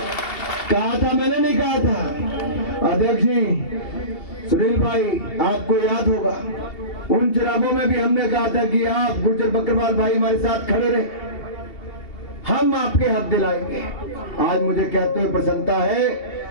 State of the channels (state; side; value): late; right; 2.7 ms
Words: कहा था, मैंने नहीं कहा था। अध्यक्ष जी, सुनील भाई, आपको याद होगा उन चुनावों में भी हमने कहा था कि आप गुज्जर बकरवाल भाई हमारे साथ खड़े रहे, हम आपके हक दिलाएंगे। आज मुझे कहते हुए प्रसन्नता है,